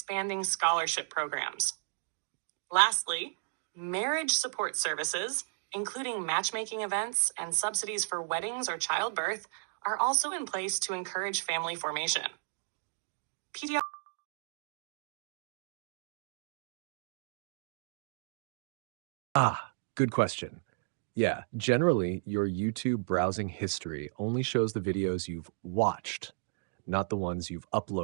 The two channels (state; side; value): silent; left; digital silence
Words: scholarship programs. Lastly, marriage support services, including matchmaking events and subsidies for weddings or childbirth, are also in place to encourage family formation. Good question. Yeah, generally, your YouTube browsing history only shows the videos you've watched, not the ones you've